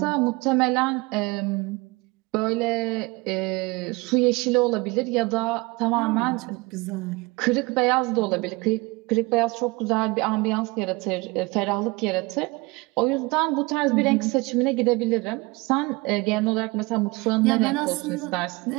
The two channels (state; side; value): quieter; left; 24.5 dB